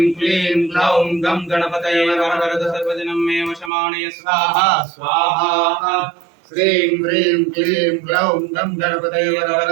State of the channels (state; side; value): drops out; left; at 3.7 s